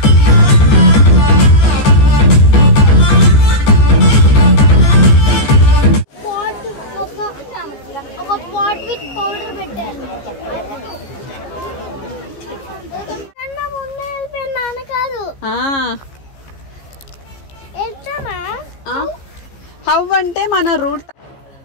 ఒక పాట్ విత్ పౌడర్ పెట్టారు. నాన్న కాదు హౌ అంటే మన రూట్.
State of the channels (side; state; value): right; late; 15 ms